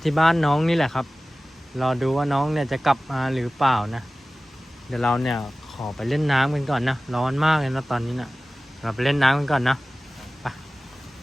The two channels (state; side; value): normal; both; correlation 0.97